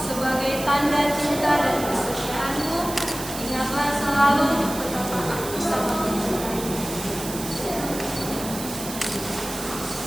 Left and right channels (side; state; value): right; noise; hiss, 9 dB below the sound